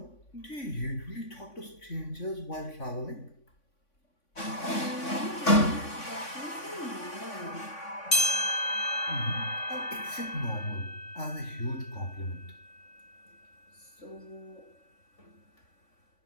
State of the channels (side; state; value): right; late; 3.5 ms